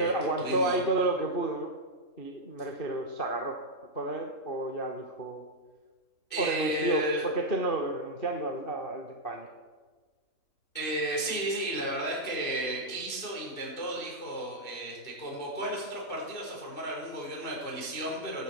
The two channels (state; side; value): late; right; 2.7 ms